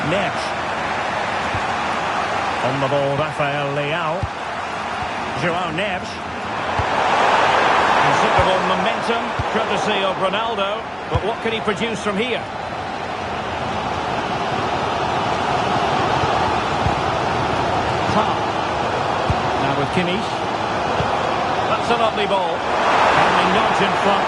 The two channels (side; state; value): both; identical; correlation 1.00